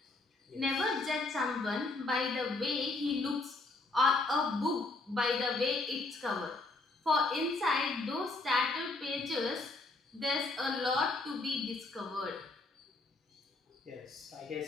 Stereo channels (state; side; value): quieter; right; 3.3 dB